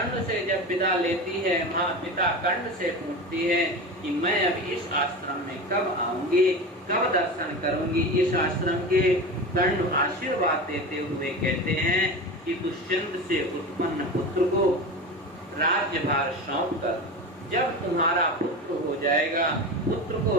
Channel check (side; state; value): both; normal; correlation 0.27